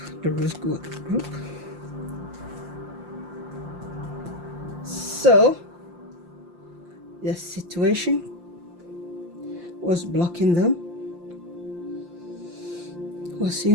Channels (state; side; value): late; left; 5.7 ms